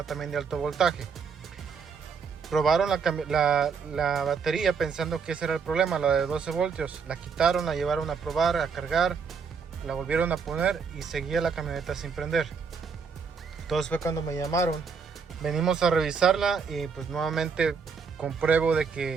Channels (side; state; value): left; quieter; 5.7 dB